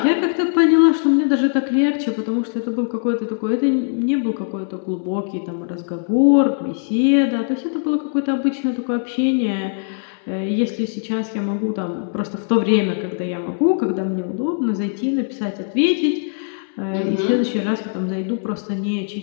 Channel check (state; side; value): silent; right; 65 dB below the other